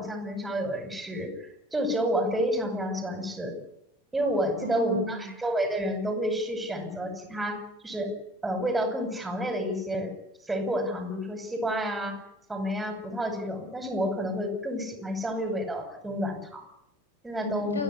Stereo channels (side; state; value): both; normal; correlation 0.50